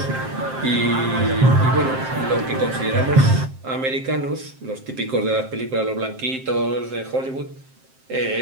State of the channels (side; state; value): left; late; 7.6 ms